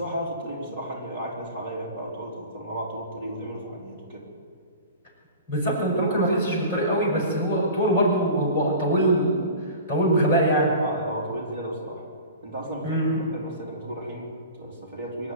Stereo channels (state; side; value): inverted; both; correlation -0.38